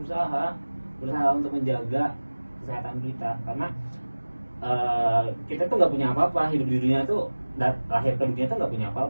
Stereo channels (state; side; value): inverted; both; correlation -1.00